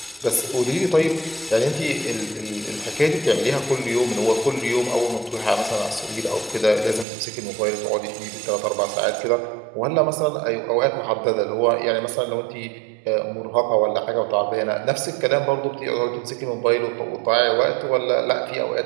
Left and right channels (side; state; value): left; drops out; at 7.1 s